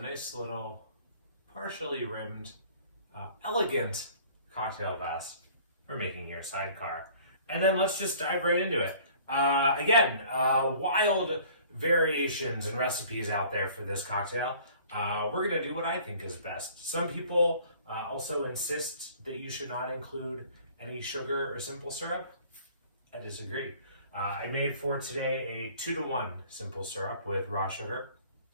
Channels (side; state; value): both; inverted; correlation -0.51